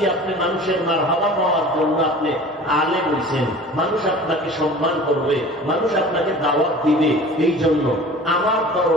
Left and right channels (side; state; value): both; normal; correlation 0.42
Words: আপনি মানুষের মারহাবা পাওয়ার জন্য আপনি আলেম হইছেন। মানুষ আপনাকে সম্মান করবে, মানুষ আপনাকে দাওয়াত দিবে, এই জন্য আমার